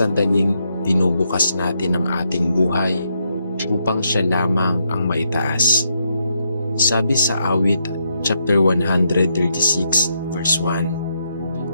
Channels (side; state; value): both; inverted; correlation -0.79